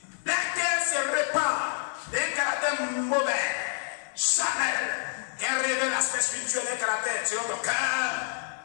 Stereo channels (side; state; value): right; silent; digital silence